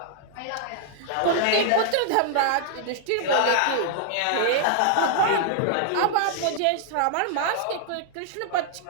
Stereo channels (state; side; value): different; both; correlation -0.01